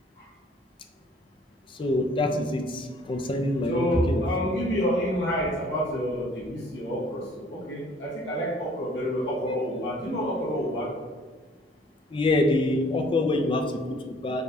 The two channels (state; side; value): normal; both; correlation 0.57